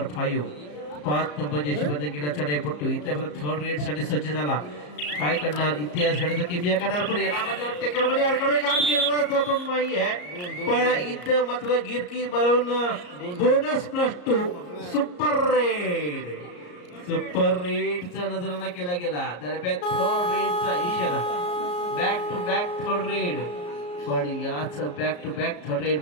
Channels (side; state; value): right; late; 34 ms